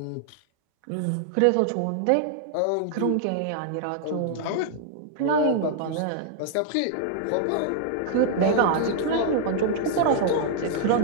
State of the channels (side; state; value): both; different; correlation -0.01